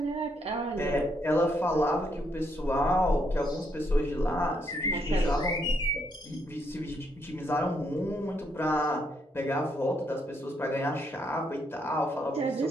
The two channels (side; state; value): both; normal; correlation 0.75